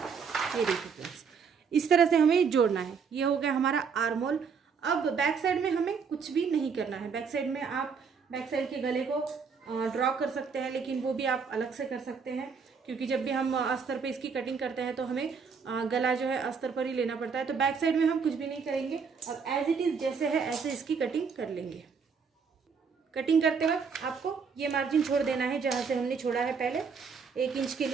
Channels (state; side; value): quieter; left; 5.9 dB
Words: ये देखिए फ्रेंड्स, इस तरह से हमें जोड़ना है। ये हो गया हमारा आर्म होल। अब बैक साइड में हमें कुछ भी नहीं करना है। बैक साइड में आप बैक साइड के गले को ड्रॉ कर सकते हैं, लेकिन वो भी आप अलग से कर सकते हैं। क्योंकि जब भी हम अस्तर पे इसकी कटिंग करते हैं तो हमें गला जो है अस्तर पर ही लेना पड़ता है। तो बैक साइड में हम कुछ भी नहीं करेंगे, अब एज इट इज़ जैसे है ऐसे इसकी कटिंग कर लेंगे। कटिंग करते वक्त आपको ये मार्जिन छोड़ देना है जहाँ से हमने छोड़ा है पहले 1 इंच के